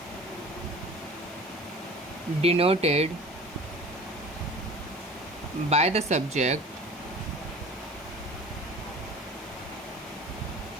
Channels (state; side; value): normal; both; correlation 0.41